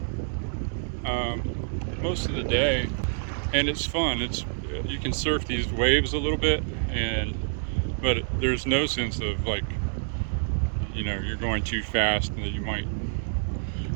most of the day, and it's fun. You can surf these waves a little bit, but there's no sense of like, you know, you're going too fast and that you might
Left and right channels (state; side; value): silent; left; digital silence